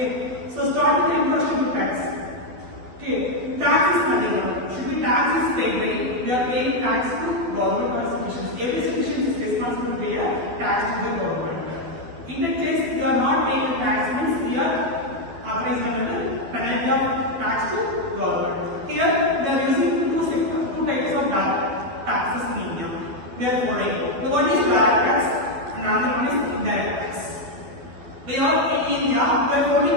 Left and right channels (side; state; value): left; late; 12 ms